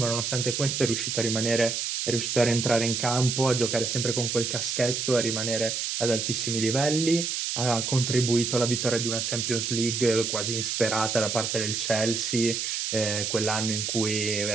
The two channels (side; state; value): right; noise; hiss, 1 dB below the sound